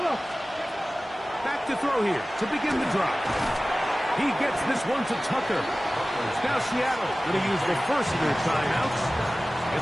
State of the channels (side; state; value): both; normal; correlation 0.97